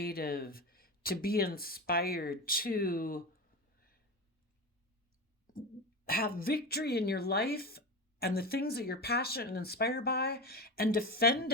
to be inspired, to have victory in your life and the things that you're passionate and inspired by, and defend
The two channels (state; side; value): normal; both; correlation 0.23